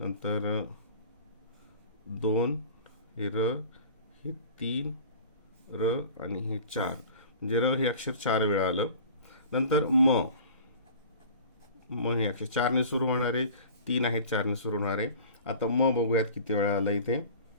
2 हे र, हे 3 र आणि हे 4, म्हणजे र हे अक्षर 4 वेळा आलं. नंतर म हे अक्षर 4 ने सुरू होणारे, 3 आहेत 4 ने सुरू होणारे. आता म बघूयात किती वेळा आलं इथे.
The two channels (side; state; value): both; inverted; correlation -0.42